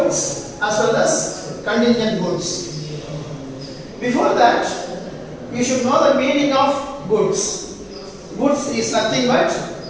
as well as contingent goods. Before that, you should know the meaning of goods. Goods is nothing but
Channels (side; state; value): both; identical; correlation 1.00